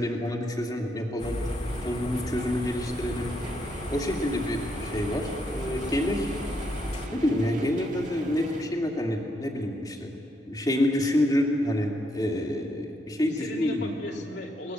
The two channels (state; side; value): normal; both; correlation 0.77